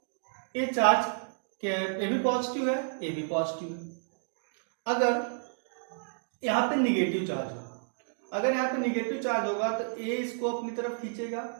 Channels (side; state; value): left; silent; digital silence